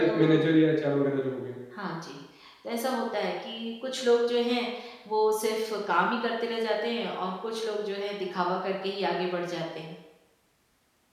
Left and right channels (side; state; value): both; identical; correlation 1.00